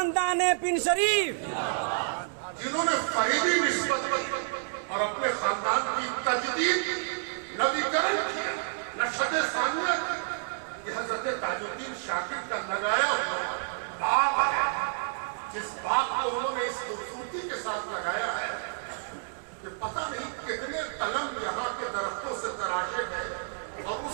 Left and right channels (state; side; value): silent; left; digital silence